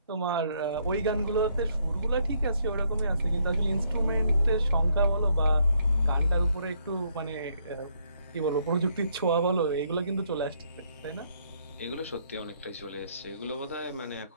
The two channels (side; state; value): both; inverted; correlation -0.70